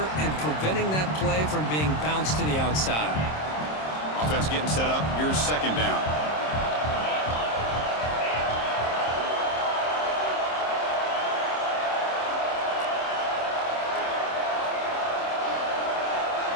and preventing that play from being bounced to the outside. Offense getting set up. Here's second down.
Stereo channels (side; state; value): right; late; 26 ms